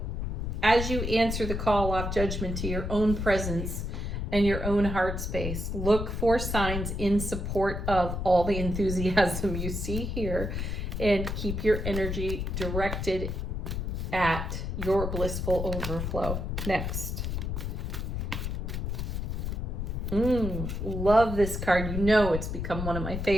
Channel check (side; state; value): left; noise; rumble, 3 dB below the sound